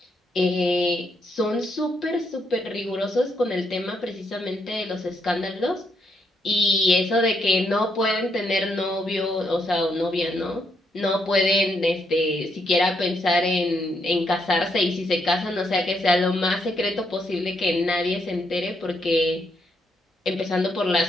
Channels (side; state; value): both; normal; correlation 0.77